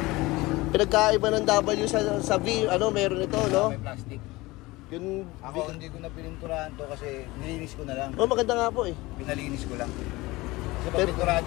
Pinagkaiba ng W sa V. Meron ito, no? May plastic. Yun, ako hindi ko na pininturahan to kasi nilinis ko na lang. Maganda nga po eh. Pinalinis ko lang. Kasi pag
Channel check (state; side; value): quieter; right; 21.0 dB